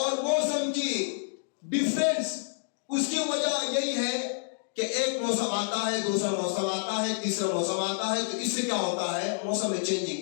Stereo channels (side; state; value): right; silent; digital silence